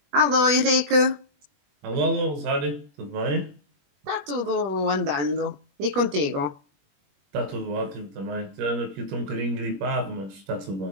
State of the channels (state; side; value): late; left; 21 ms